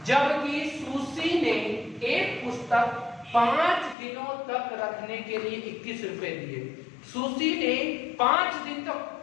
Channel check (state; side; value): drops out; right; at 4.0 s